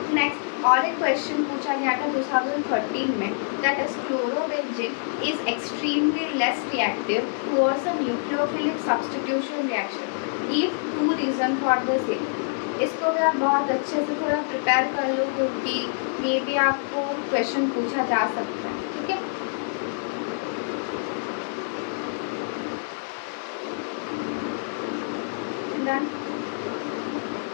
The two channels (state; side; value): silent; right; digital silence